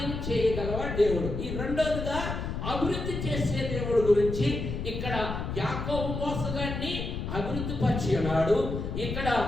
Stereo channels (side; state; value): left; noise; rumble, 4 dB below the sound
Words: చేయగలవ దేవుడు. ఈ రెండోదిగా అభివృద్ధి చేసే దేవుడు గురించి ఇక్కడ యాకోబు మోసగాన్ని అభివృద్ధి పరిచి ఉన్నాడు. ఇక్కడ